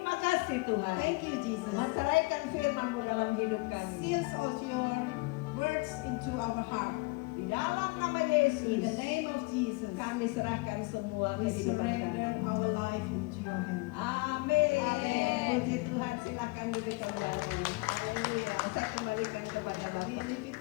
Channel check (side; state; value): right; quieter; 25.7 dB